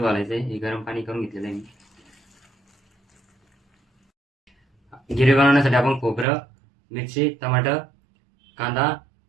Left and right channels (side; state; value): left; drops out; at 6.2 s